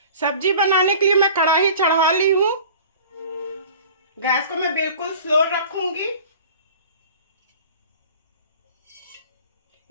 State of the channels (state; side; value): inverted; both; correlation -0.43